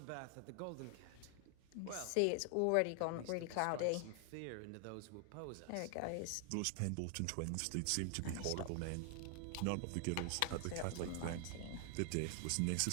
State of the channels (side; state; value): both; different; correlation 0.00